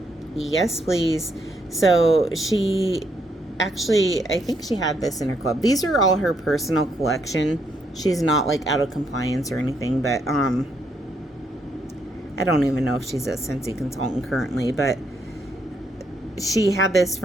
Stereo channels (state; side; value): normal; both; correlation 0.75